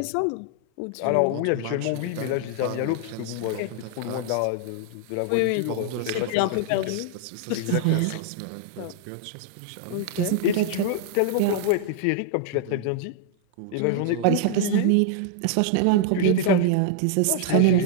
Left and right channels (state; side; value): different; both; correlation -0.01